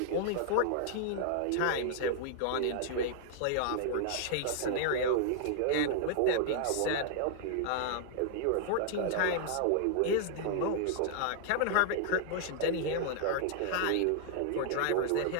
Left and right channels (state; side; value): different; both; correlation -0.01